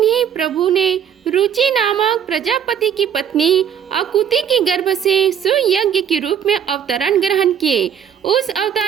प्रभु ने रुचि नामक प्रजापति की पत्नी अकुति के गर्भ से सुयज्ञ के रूप में अवतरण ग्रहण किए। उस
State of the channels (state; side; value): quieter; left; 8.6 dB